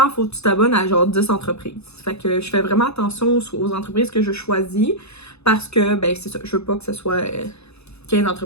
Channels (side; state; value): right; late; 0.79 ms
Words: faut que tu t'abonnes à genre 10 entreprises. Fait que je fais vraiment attention aux entreprises que je choisis parce que, ben, c'est ça, je veux pas que ce soit 15